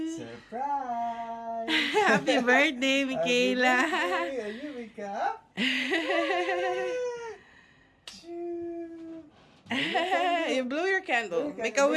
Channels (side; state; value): both; identical; correlation 1.00